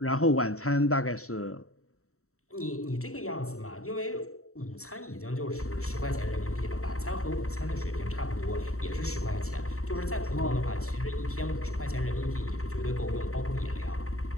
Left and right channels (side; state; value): right; late; 0.64 ms